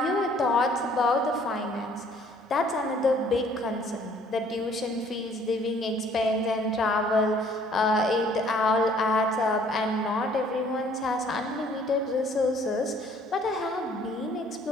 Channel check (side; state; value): both; normal; correlation 0.58